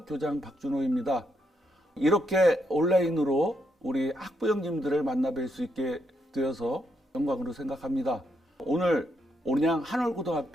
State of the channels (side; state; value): both; normal; correlation 0.78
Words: 교장 박준호입니다. 이렇게 온라인으로 우리 학부형님들을 만나뵐 수 있게 되어서 영광으로 생각합니다. 오늘 온양